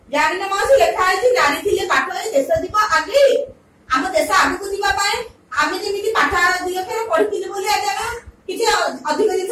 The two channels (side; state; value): both; identical; correlation 1.00